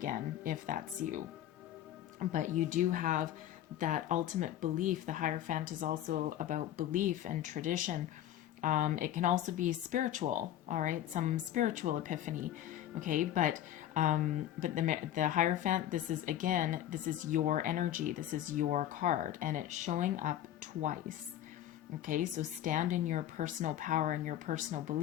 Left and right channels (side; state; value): right; quieter; 11.9 dB